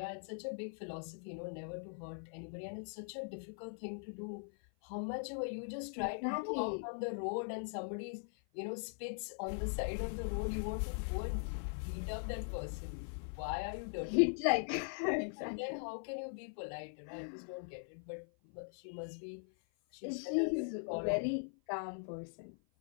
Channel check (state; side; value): silent; right; 50 dB below the other